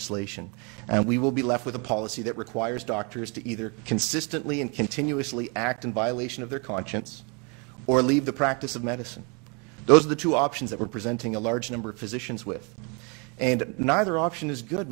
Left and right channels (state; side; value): quieter; left; 32.9 dB